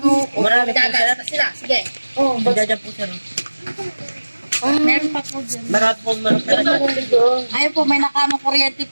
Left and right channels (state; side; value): inverted; both; correlation -1.00